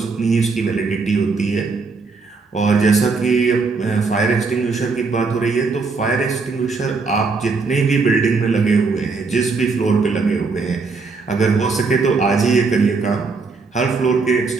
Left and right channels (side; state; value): left; quieter; 4.4 dB